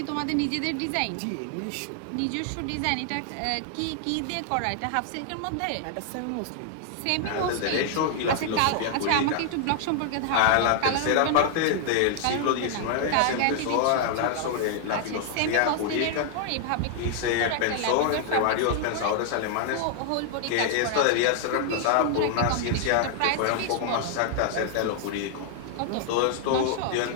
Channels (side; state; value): both; different; correlation 0.00